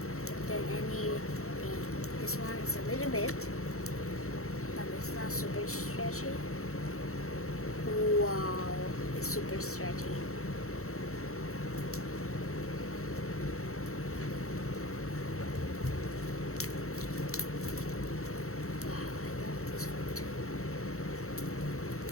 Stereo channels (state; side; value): late; right; 0.63 ms